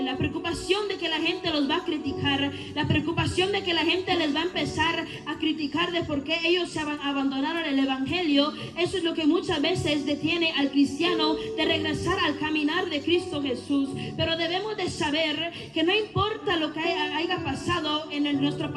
la preocupación de que la gente los va a criticar, la preocupación de que la gente les va a empezar a criticar de por qué ellos se abandonaron el evangelio. Eso es lo que muchas veces detiene al cristiano de regresar al caminar de Cristo Jesús. Pero debemos de saber que no importa lo que haya pasado en nuestro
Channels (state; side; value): identical; both; correlation 1.00